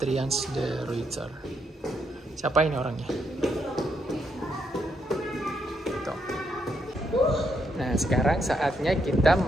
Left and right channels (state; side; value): normal; both; correlation 0.77